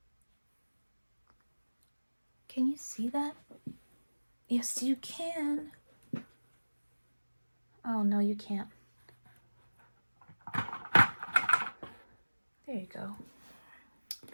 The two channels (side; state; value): both; inverted; correlation -1.00